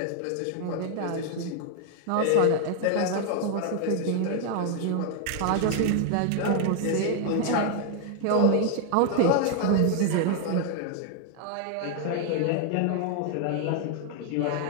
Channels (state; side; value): different; both; correlation 0.00